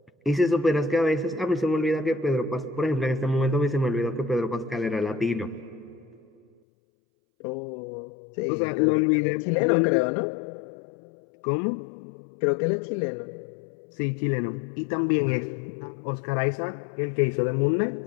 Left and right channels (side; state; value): right; drops out; at 6.6 s